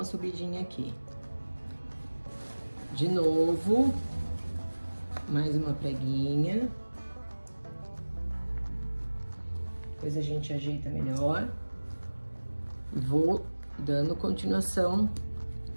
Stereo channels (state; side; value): inverted; both; correlation -1.00